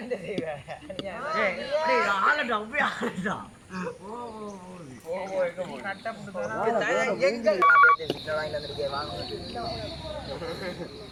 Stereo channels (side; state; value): both; identical; correlation 1.00